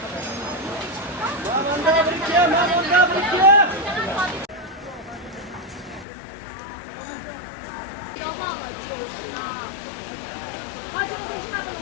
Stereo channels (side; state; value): right; drops out; at 6.1 s